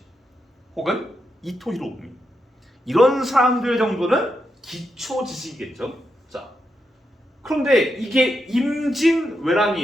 혹은 이토 히로부미. 이런 사람들 정도는 기초 지식이겠죠. 자, 그런데 이게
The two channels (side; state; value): both; normal; correlation 0.84